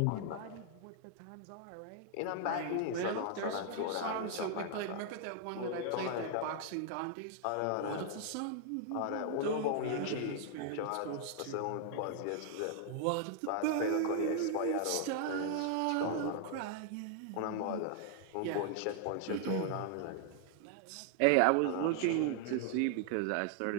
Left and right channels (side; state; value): both; different; correlation 0.00